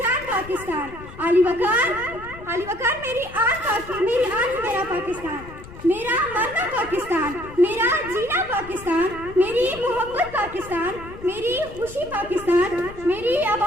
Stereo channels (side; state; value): left; noise; rumble, 16 dB below the sound